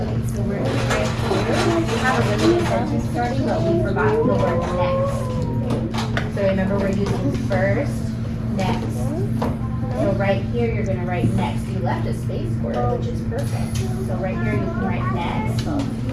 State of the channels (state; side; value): identical; both; correlation 1.00